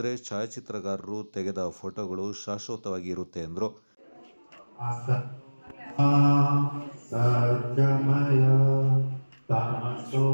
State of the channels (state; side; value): inverted; both; correlation -1.00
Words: ಛಾಯಾಚಿತ್ರಗಾರರು ತೆಗೆದ ಫೋಟೋಗಳು ಶಾಶ್ವತವಾಗಿ ಇರುತ್ತೆ ಎಂದರು.